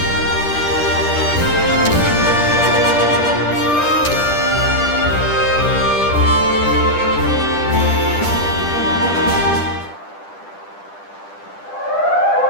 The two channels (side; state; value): right; late; 10 ms